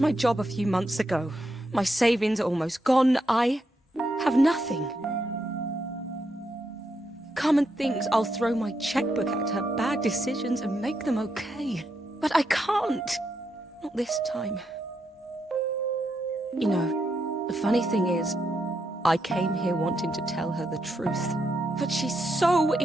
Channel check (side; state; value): both; normal; correlation 0.81